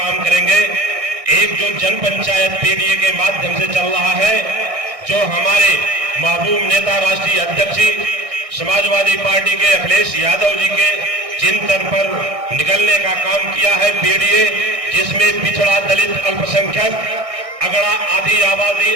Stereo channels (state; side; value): late; left; 1.6 ms